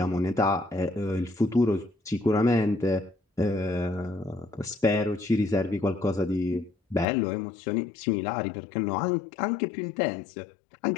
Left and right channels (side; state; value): right; drops out; at 7.1 s